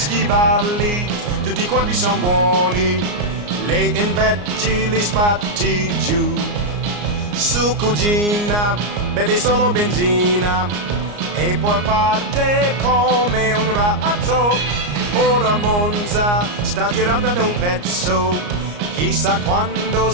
tutti quanti sono buoni, lei invece li spatti giù. Su cugina, bevi solo benzina, e poi parte come un razzo. Ora Monza sta girando da un pezzo, chissà quando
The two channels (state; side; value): late; left; 34 ms